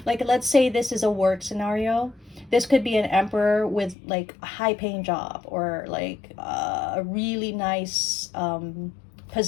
let's say this is a work scenario. This could be an emperor with like a high-paying job or like a really nice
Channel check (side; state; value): right; drops out; at 4.0 s